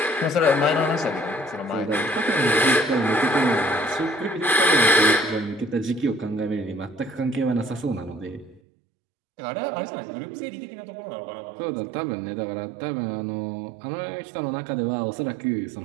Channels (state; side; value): drops out; left; at 8.6 s